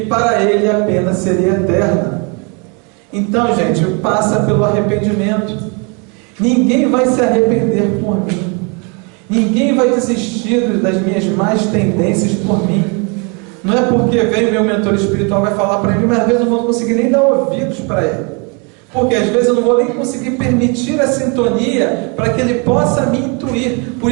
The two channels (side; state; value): left; quieter; 33.2 dB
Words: para ele a pena seria eterna. Então, gente, passa pelo arrependimento. Ninguém vai se arrepender por mim. Ninguém vai desistir das minhas más tendências por mim. Não é porque vem o meu mentor espiritual vai falar para mim, mas às vezes eu não vou conseguir nem dar ouvidos para ele. Porque às vezes eu não vou nem conseguir permitir a sintonia para que ele possa me intuir. Por